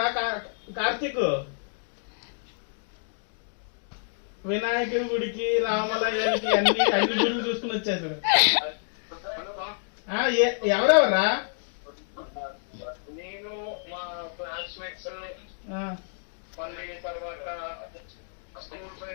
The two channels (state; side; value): silent; right; digital silence